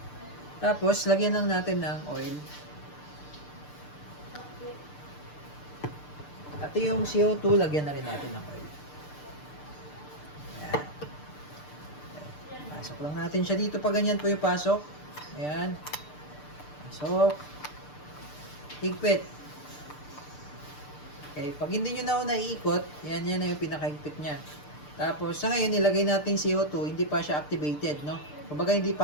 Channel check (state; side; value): late; right; 6.8 ms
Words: Tapos, lagyan lang natin ng oil. At yung CO2, lagyan na rin natin ng oil. Ayan. Pasok lang natin siya dito. Pag ganyan po yung pasok. Ayan. Pasok. Higpit. Okay. Pag hindi nyo na naiikot, yan na yung pinakahigpit niya. Tapos, sa ngayon, ilagay natin CO2. Hindi pa siya activated, no? Kumbaga, hindi